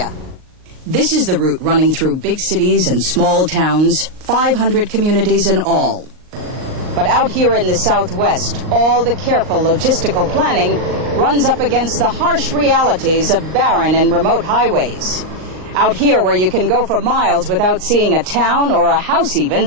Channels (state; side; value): late; left; 38 ms